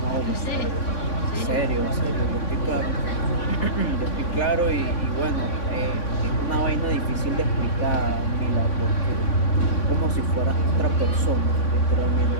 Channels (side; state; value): right; late; 3.6 ms